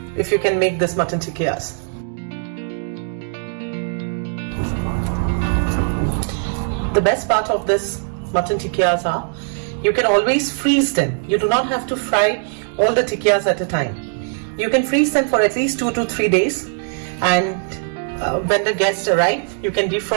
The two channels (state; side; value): silent; left; 62 dB below the other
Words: if you can make this mutton tikkiyas. The best part of this mutton tikkiyas are, you can always freeze them. You do not have to fry all the tikkiyas at a time. You can freeze them for at least 2 to 3 days, and when the guests arrive, you can